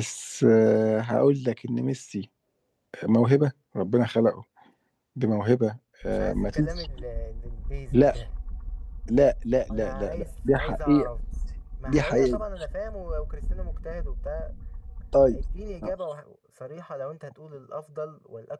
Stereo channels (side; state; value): both; identical; correlation 1.00